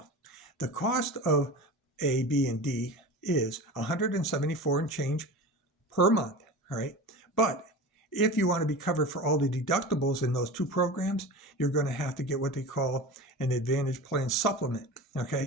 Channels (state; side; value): normal; both; correlation 0.32